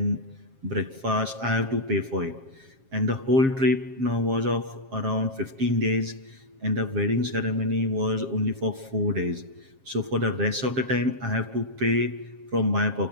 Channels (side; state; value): left; late; 7.5 ms